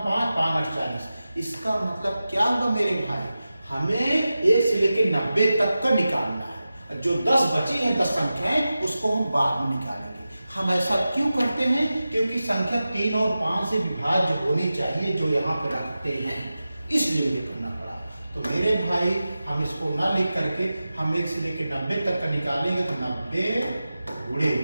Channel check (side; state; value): both; inverted; correlation -0.94